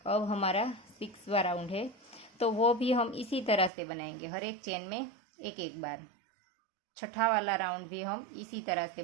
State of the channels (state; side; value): drops out; left; at 3.7 s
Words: अब हमारा 6वां राउंड है, तो वो भी हम इसी तरह से बनाएंगे, हर एक चेन में एक एक बार। छठा वाला राउंड भी हम इसी तरह से